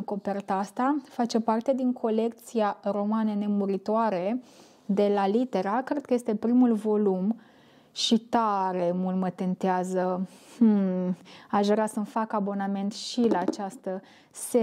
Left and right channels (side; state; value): both; identical; correlation 1.00